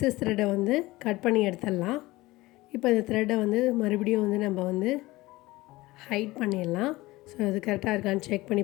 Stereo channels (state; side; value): quieter; right; 19.6 dB